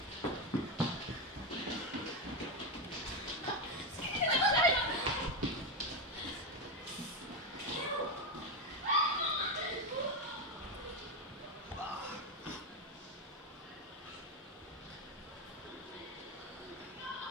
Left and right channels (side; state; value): both; normal; correlation 0.10